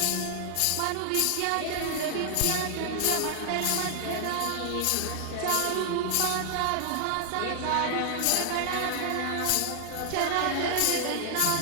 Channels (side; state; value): both; different; correlation 0.00